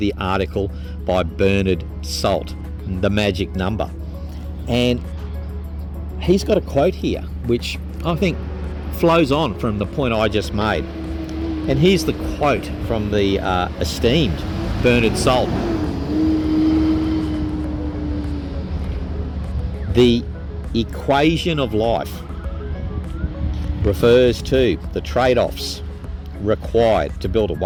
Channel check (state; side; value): identical; both; correlation 1.00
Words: article by Bernard Salt, The Magic Number. And he's got a quote here, which I think flows on from the point I just made. And here's the quote from the esteemed Bernard Salt. The equation of life refers to the trade-offs required to build a